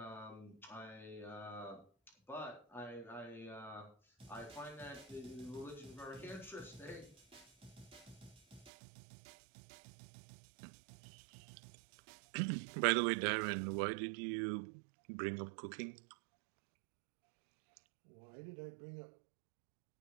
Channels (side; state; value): left; drops out; at 8.7 s